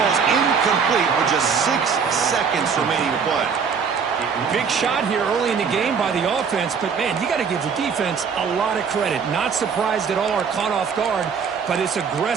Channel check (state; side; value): quieter; left; 6.2 dB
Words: incomplete with just 6 seconds remaining to play. Big shot here early in the game by the offense, but man, you got to give the defense a lot of credit. Not surprised at all or caught off guard by this